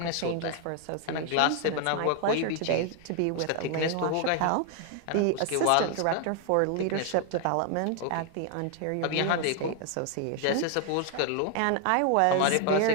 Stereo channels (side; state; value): both; different; correlation 0.00